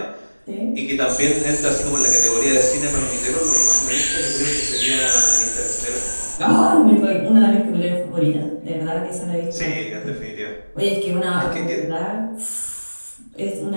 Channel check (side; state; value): both; inverted; correlation -1.00